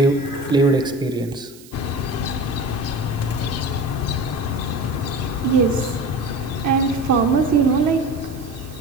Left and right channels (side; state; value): right; noise; hiss, 22 dB below the sound